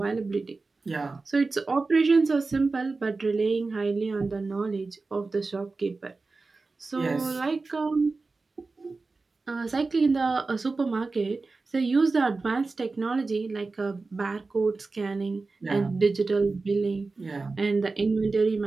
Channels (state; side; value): quieter; left; 3.8 dB